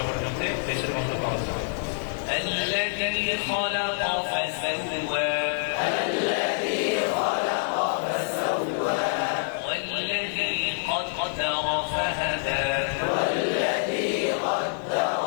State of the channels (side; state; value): right; silent; digital silence